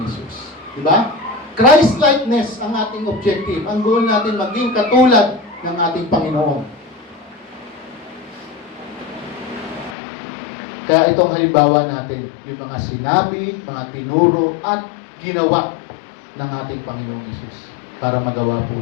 Hesus. Diba? Christ-likeness ang ating objective. Ang goal natin, maging katulad ng ating Panginoon. Kaya itong halimbawa natin, yung mga sinabi, mga tinuro, at ginawa ng ating Panginoong Hesus para magawa po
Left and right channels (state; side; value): drops out; right; at 10.0 s